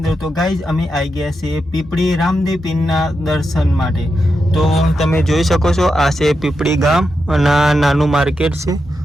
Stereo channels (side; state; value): both; normal; correlation 0.87